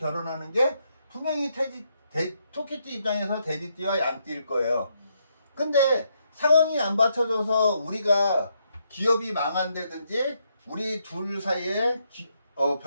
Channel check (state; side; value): inverted; both; correlation -0.77